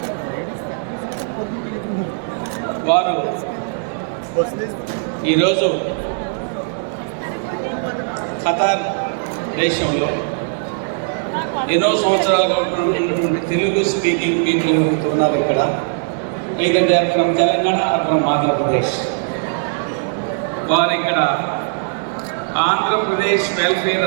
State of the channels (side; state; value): left; silent; digital silence